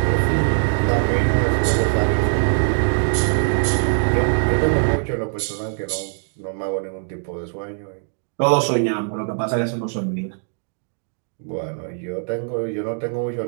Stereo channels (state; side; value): silent; left; 64 dB below the other